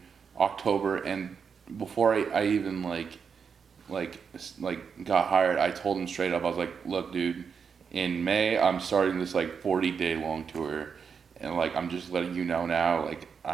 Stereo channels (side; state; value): left; quieter; 6.3 dB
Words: October, and before I even got hired, I told him straight up, I was like, look, dude, in May, I'm starting this like 40-day long tour, and like, I'm just letting you know now, like,